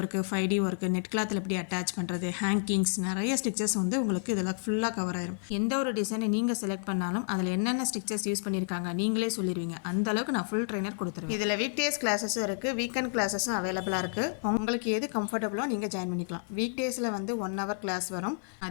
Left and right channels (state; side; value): silent; right; 58 dB below the other